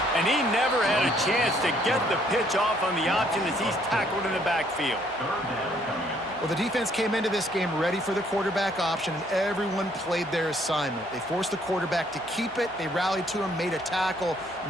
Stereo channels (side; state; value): both; normal; correlation 0.66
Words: And he never had a chance to get the pitch off on the option as he's tackled in the backfield. Well, the defense came into this game ready for the quarterback option, and everyone played their assignment. They forced the quarterback to keep it. They rallied to him, made a tackle.